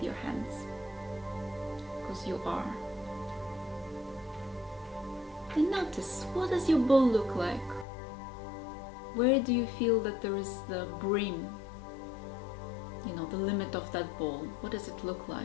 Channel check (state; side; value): drops out; right; at 7.9 s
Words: your hands, because you are. And notice, what does your bowl look like? Where do you feel that there is the brim, the limit of that bowl? What does it look